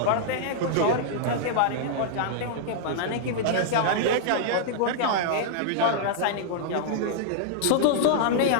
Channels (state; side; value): different; both; correlation -0.01